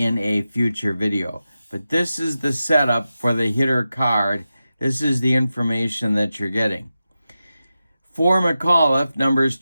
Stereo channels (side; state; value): both; inverted; correlation -0.92